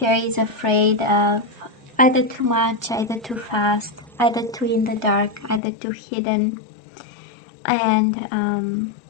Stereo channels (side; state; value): right; drops out; at 5.6 s